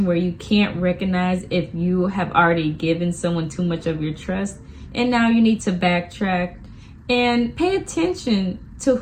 where you can't recognize if you have already given someone too much of your trust, and now you need to backtrack and pay attention to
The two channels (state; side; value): identical; both; correlation 1.00